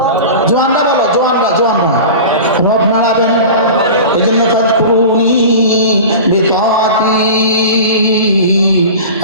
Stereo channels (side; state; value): both; inverted; correlation -0.34